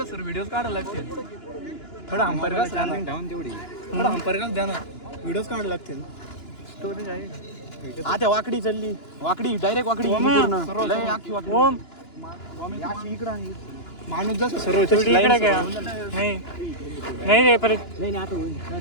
सर व्हिडिओ काढायला लागते थोडा अंपायर का चार्जिंग ठेवून तेवढी थोडा अंपायर का द्या ना व्हिडिओज काढायला लागतील स्टोरेज आहे आता वाकडी चालली वाकडी डायरेक्ट वाकडी पूर्ण लय आखी वाकडी ओम इकडं आहे माणूस जसं सर्व इकडे काय नाही नाही रे परत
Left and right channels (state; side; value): late; right; 2.9 ms